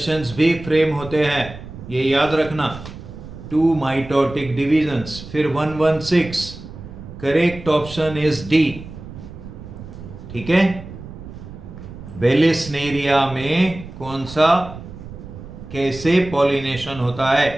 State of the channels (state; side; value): noise; right; rumble, 14 dB below the sound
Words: भी फ्रेम होते हैं, ये याद रखना। 2 माइटोटिक डिविजन्स। फिर 116, करेक्ट ऑप्शन इज डी। ठीक है, वेलिस्नेरिया में कौन सा, कैसे पॉलिनेशन होता है?